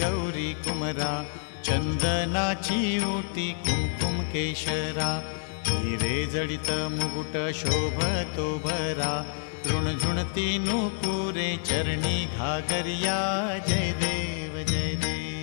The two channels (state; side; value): silent; right; digital silence